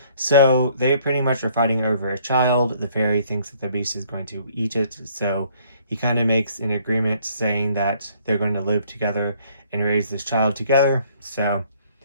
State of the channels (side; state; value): both; inverted; correlation -0.61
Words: So they pretty much are fighting over a child. The fairy thinks that the beast is going to eat it, so he kind of makes an agreement saying that they're going to live together and raise this child together. So